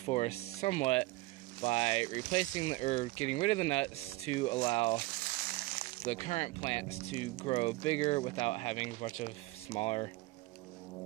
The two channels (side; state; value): left; quieter; 20.7 dB